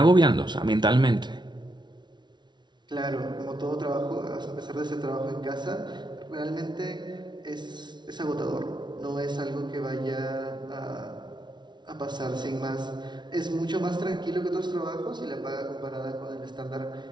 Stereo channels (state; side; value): late; left; 0.21 ms